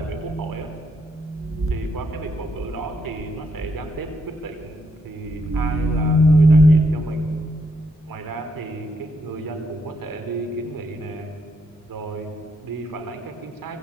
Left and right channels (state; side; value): normal; both; correlation 0.77